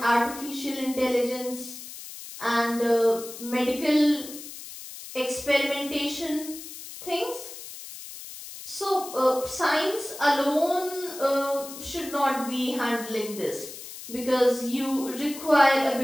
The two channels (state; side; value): noise; left; hiss, 13 dB below the sound